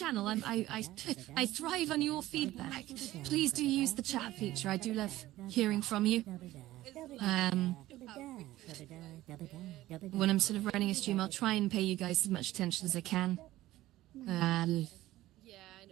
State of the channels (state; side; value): quieter; left; 15.9 dB